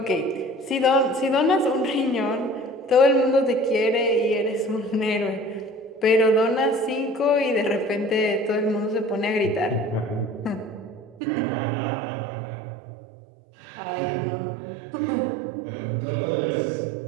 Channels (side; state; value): left; drops out; at 11.2 s